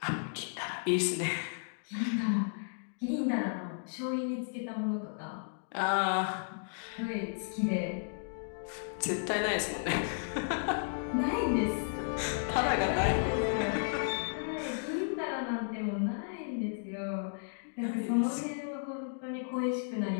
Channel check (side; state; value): right; silent; digital silence